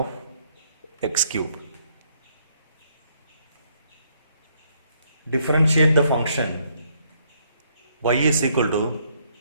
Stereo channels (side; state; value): both; inverted; correlation -0.70